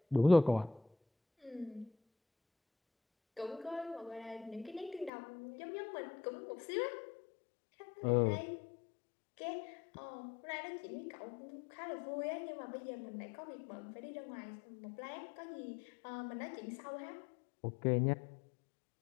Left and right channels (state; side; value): drops out; right; at 5.1 s